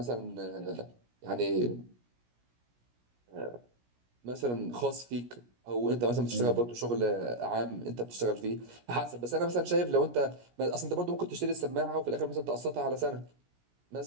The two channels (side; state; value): left; late; 17 ms